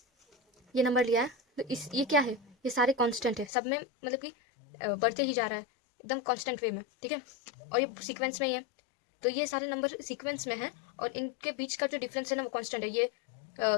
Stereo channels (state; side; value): drops out; right; at 3.5 s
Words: ये नंबर लिया है। तो ये क्या है, ये सारे कांस्टेंट है, सब में मतलब कि बढ़ते ही जा रहा है एकदम कांस्टेंट वे में, ठीक है, और ये सीक्वेंस में ही है। तो ये सारे नंबर सीक्वेंस में है और इनके बीच का जो डिफरेंस है ना वो कांस्टेंट है। ये